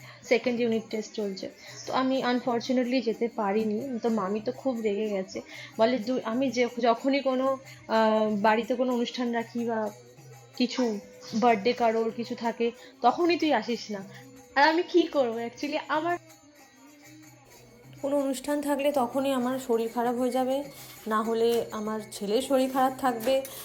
সেকেন্ড ইউনিট টেস্ট চলছে। তো আমি আনফর্চুনেটলি যেতে পারিনি। তো মামি তো খুব রেগে গেছে, বলে আমি যখনই কোনো বাড়িতে কোনো অনুষ্ঠান রাখি বা কিছু বার্থডে কারোর কিছু থাকে তখনই তুই আসিস না। আর আমি কি করবো, অ্যাকচুয়ালি আমার কোনো অনুষ্ঠান থাকলে তখনই আমার শরীর খারাপ হয়ে যাবে, না হলে আমার ছেলের শরীর খারাপ থাকবে,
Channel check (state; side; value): identical; both; correlation 1.00